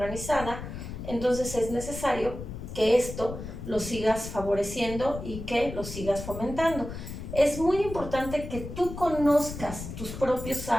entonces es necesario que esto lo sigas favoreciendo y que lo sigas fomentando. Es muy importante que tú conozcas tus propios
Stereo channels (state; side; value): noise; left; rumble, 9 dB below the sound